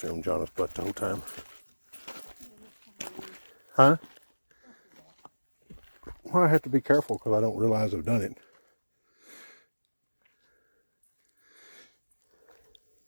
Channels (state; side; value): inverted; both; correlation -1.00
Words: film Jonna's butt the whole time. Huh? Well, I have to be careful because I don't realize I've done it.